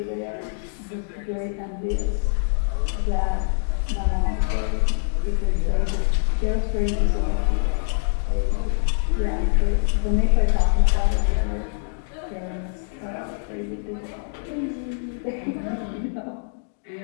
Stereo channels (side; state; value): right; silent; digital silence